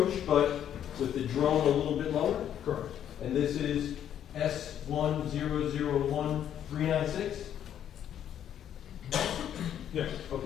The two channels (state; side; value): quieter; right; 10.0 dB